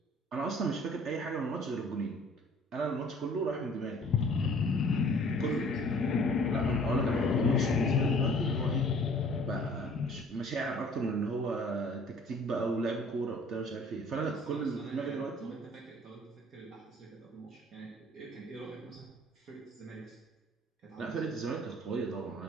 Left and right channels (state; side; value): normal; both; correlation 0.53